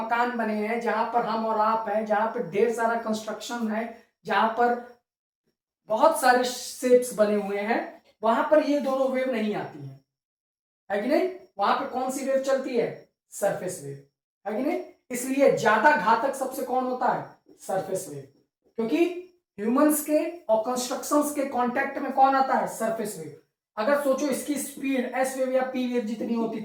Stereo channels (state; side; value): identical; both; correlation 1.00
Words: बने हैं, जहां पर हम और आप हैं, जहां पर ढेर सारा कंस्ट्रक्शन है, जहां पर बहुत सारे शेप्स बने हुए हैं, वहां पर ये दोनों वेव नहीं आती है कि नहीं। वहां पर कौन सी वेव चलती है, सरफेस वेव, है कि नहीं। इसलिए ज्यादा घातक सबसे कौन होता है, सरफेस वेव, क्योंकि ह्यूमंस के और कंस्ट्रक्शंस के कांटेक्ट में कौन आता है, सरफेस वेव। अगर सोचो इसकी स्पीड एस वेव या पी वेव जितनी होती